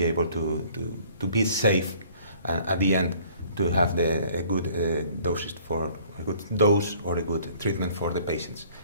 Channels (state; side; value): inverted; both; correlation -0.56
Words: able to be safe, and at the end to have a good doses for a good dose or a good treatment for the patients.